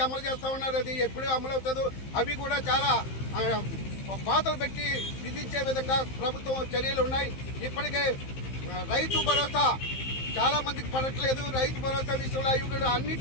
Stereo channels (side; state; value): right; late; 15 ms